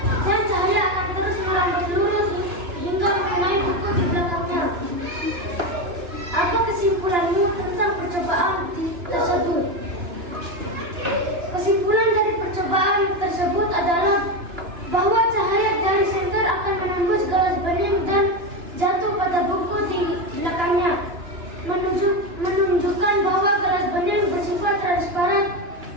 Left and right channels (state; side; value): late; left; 2.9 ms